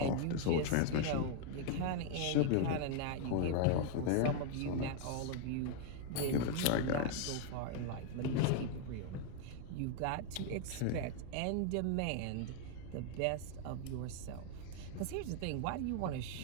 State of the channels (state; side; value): different; both; correlation 0.00